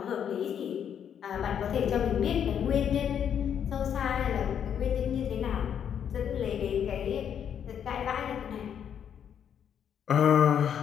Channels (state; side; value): quieter; right; 8.6 dB